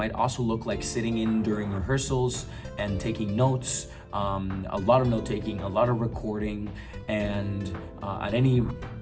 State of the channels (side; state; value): both; identical; correlation 1.00